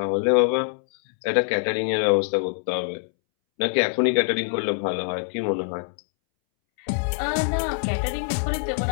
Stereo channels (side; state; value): right; silent; 62 dB below the other